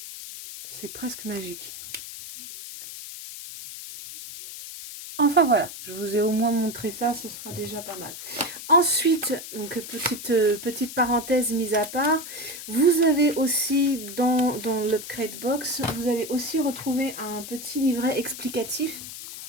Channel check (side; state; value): left; noise; hiss, 11 dB below the sound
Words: C'est presque magique. Enfin voilà, je vous ai au moins montré ça, ce sera déjà pas mal. Ensuite, donc petite parenthèse mise à part, vous avez aussi dans l'Upgrade Box, vous allez aussi retrouver un petit livret explicatif.